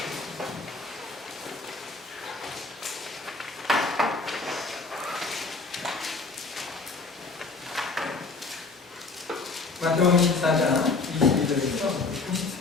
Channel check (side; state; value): right; quieter; 3.9 dB